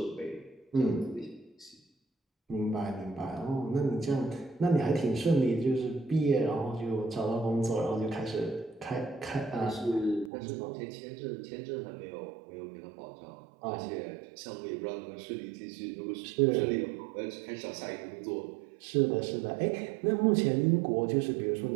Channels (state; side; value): drops out; left; at 10.3 s